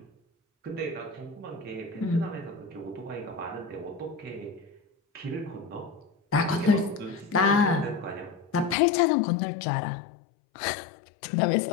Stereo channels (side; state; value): right; drops out; at 8.8 s